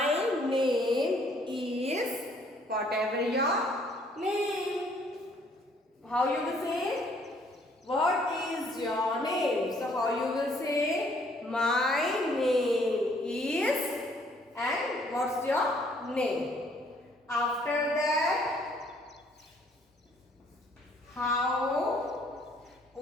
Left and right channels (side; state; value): both; normal; correlation 0.63